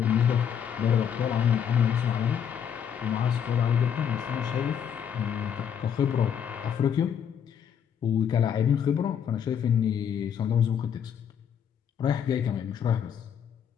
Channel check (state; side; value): quieter; right; 8.2 dB